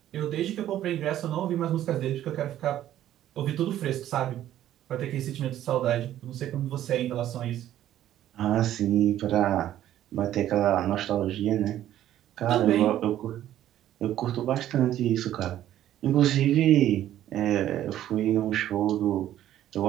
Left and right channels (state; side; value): quieter; left; 12.3 dB